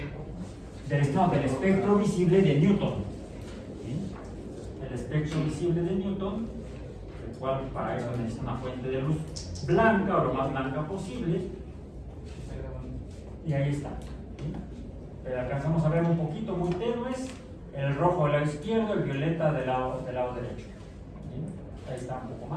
visible de Newton. ¿Sí? El espectro visible de Newton, el cual para eso necesita una fuente de luz blanca o lo más blanca posible. Y ahí está. ¿Sí? Pero alcanzamos a ver un poquito muy tenues, el rojo del lado izquierdo, el violeta del lado derecho. ¿Sí? Ahí está un poco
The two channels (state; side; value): identical; both; correlation 1.00